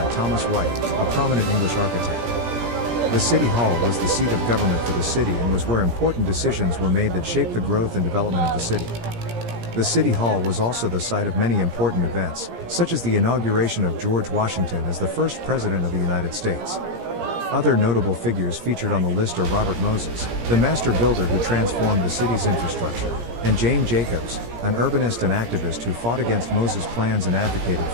Thomas White, a prominent English architect. The city hall was the seat of government for the city and was where important decisions were made that shaped the growth and development of the city. The city hall was also the site of many important events, such as the inauguration of George Washington as the first president of the United States. Other notable figures featured on the list are Robert Moses, the master builder who transformed the city's infrastructure, and Jane Jacobs, an urbanist and activist who fought against Moses' plans and advocated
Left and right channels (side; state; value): left; late; 17 ms